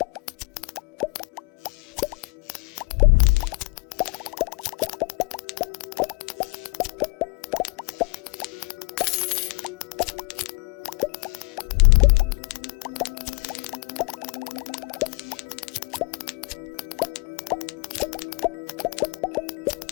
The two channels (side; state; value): right; quieter; 27.1 dB